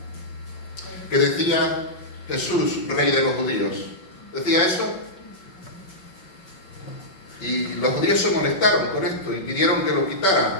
Que decía Jesús, Rey de los judíos. ¿Decía eso? Y los judíos se molestaron con esto y pidieron que lo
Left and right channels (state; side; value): late; right; 5.3 ms